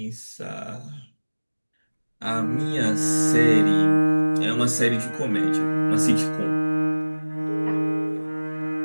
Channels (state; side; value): inverted; both; correlation -1.00